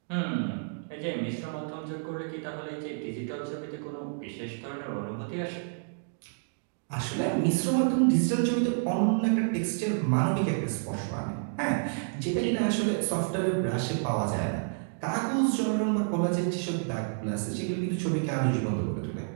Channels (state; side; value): silent; left; digital silence